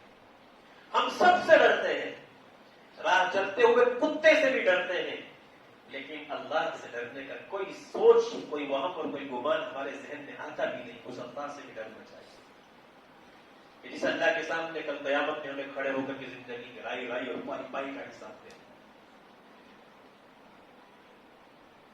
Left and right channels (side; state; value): both; identical; correlation 1.00